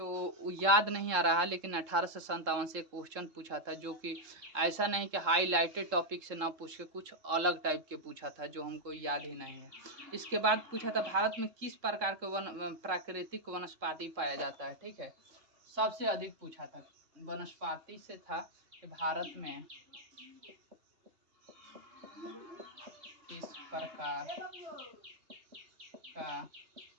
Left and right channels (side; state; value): left; late; 3.7 ms